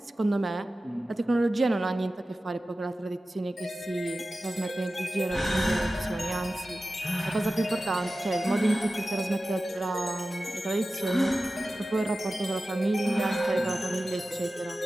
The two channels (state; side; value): normal; both; correlation 0.95